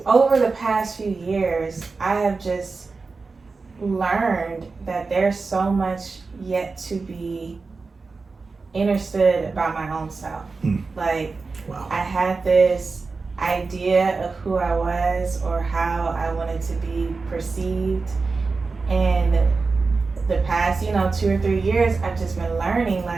over the past few years, I have just learned that there's so much yet to be understood about my own self. Like, wow. I had this idea of who I was or how I wanted to be perceived, and the past, you know, 2 or 3 years, I've just been learning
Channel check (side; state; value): left; quieter; 4.2 dB